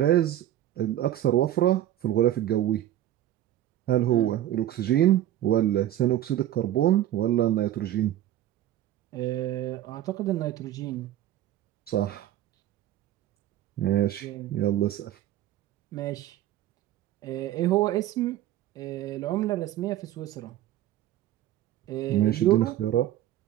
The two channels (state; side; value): quieter; left; 12.8 dB